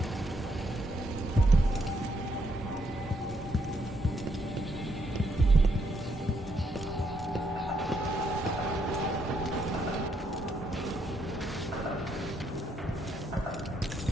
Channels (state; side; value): normal; both; correlation 0.75